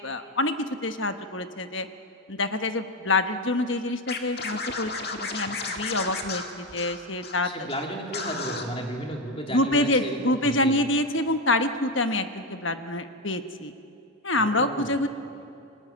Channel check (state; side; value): normal; both; correlation 0.11